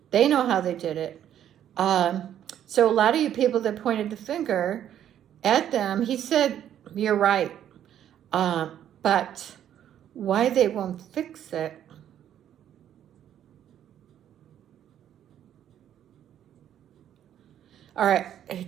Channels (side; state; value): left; quieter; 10.5 dB